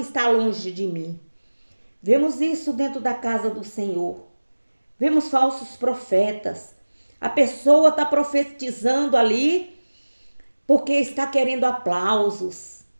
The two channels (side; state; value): both; inverted; correlation -1.00